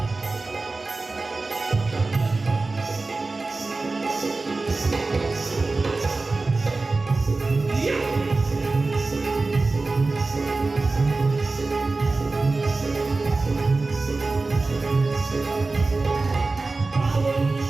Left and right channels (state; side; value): quieter; left; 3.6 dB